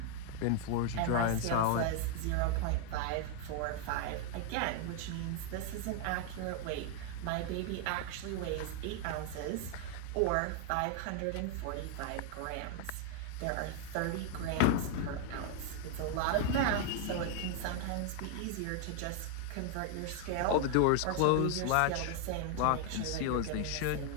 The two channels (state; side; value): different; both; correlation 0.00